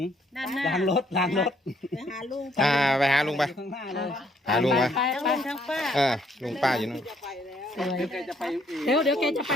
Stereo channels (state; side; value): normal; both; correlation 0.68